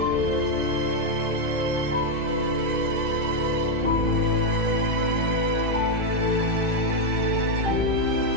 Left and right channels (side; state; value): left; late; 2.5 ms